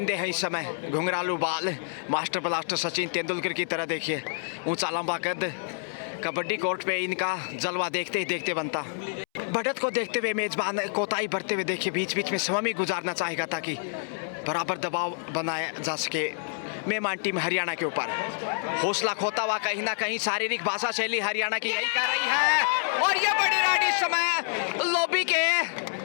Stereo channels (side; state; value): right; silent; 60 dB below the other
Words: है इस समय, घुंघरालू बाल, मास्टर ब्लास्टर सचिन तेंदुलकर की तरह। देखिए ऊंचा लंबा कद, कबड्डी कोर्ट पे इनका जलवा देखते ही देखते बनता। बढ़त को देखते हुए मेजबान कोताही बढ़ते हुए देखिए, बीच बीच में समय भी गुजारना चाहेगा ताकि बराबर दबाव बनाया जा सके मेहमान टीम हरियाणा के ऊपर। हौसला खोता हुआ कहीं ना कहीं शारीरिक भाषा शैली हरियाणा की यही कर रही है, और ये बड़ी राइड इस समय लॉबी के